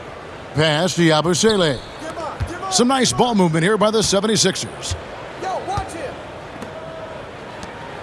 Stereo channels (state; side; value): identical; both; correlation 1.00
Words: Pass to Yabusele. Some nice ball movement here by the 76ers.